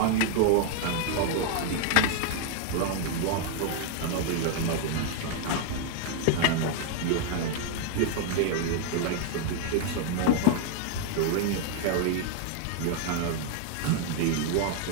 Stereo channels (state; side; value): different; both; correlation 0.00